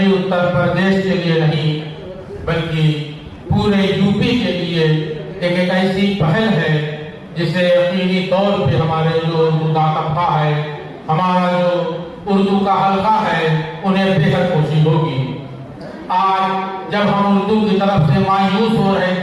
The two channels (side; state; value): both; identical; correlation 1.00